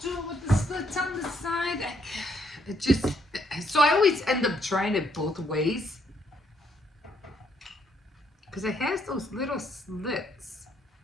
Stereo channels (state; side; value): normal; both; correlation 0.72